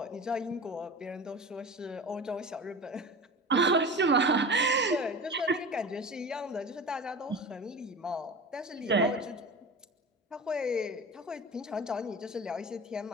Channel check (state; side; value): normal; both; correlation 0.32